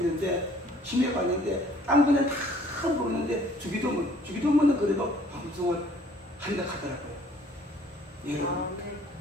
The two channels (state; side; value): normal; both; correlation 0.57